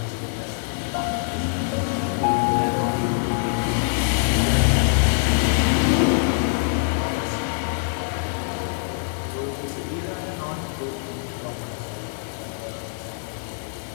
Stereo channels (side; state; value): right; silent; digital silence